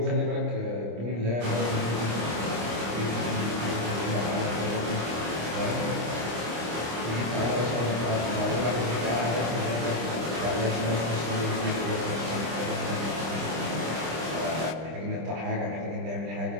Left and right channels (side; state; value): left; late; 25 ms